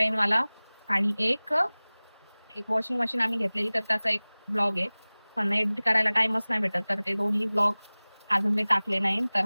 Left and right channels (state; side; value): inverted; both; correlation -1.00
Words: वाला आणि एक वॉशिंग मशीन आम्ही घेतलेली, तर त्याचा एक ब्लॉग आहे. पण एडिट करायला टाइमच नाही भेटत, तर ते दोन्ही ब्लॉग अजून मी टाकले नाही. तर